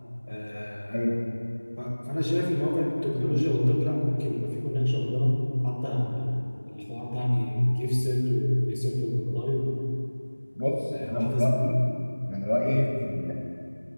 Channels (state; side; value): inverted; both; correlation -1.00